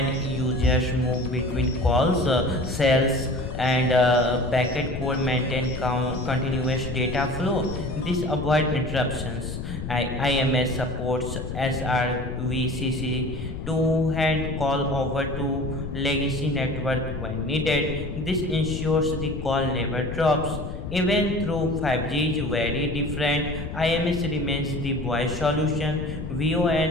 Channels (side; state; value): left; noise; rumble, 7 dB below the sound